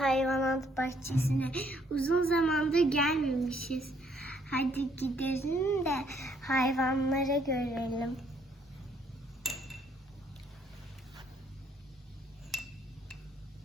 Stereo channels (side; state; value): both; normal; correlation 0.67